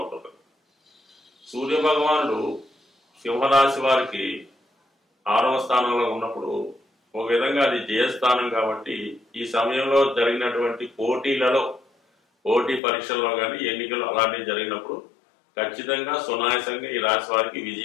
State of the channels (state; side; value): drops out; right; at 12.8 s